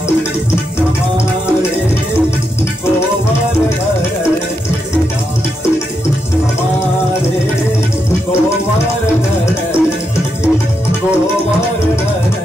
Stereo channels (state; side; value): normal; both; correlation 0.83